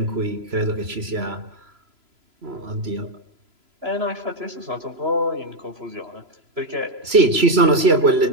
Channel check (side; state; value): left; late; 3.0 ms